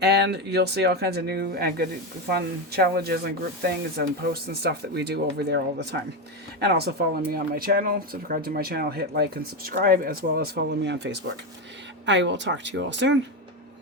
and you'll see all kinds of new and good, fun challenges and group things and posts and stuff that we do over there all the time. And also follow me on my channel, subscribe to my channel, hit like and subscribe, as well as follow me on Facebook. I will talk to you all soon.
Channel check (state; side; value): normal; both; correlation 0.12